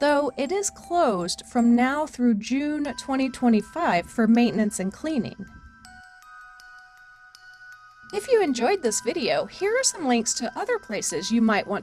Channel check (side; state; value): both; identical; correlation 1.00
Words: it is closed from now through June 2025 for maintenance and cleaning. If you enjoyed this video, here are some links to other places you might